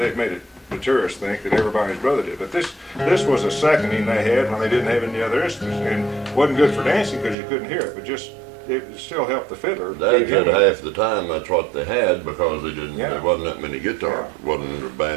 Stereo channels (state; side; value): drops out; left; at 7.4 s